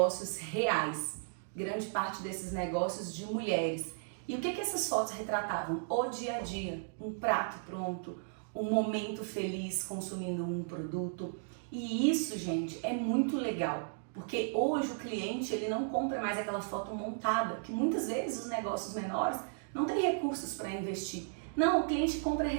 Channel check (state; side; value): silent; left; digital silence